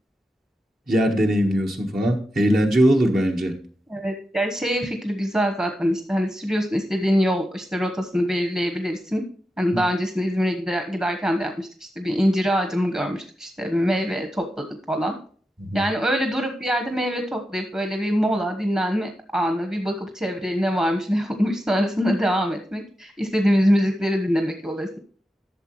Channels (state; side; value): normal; both; correlation 0.89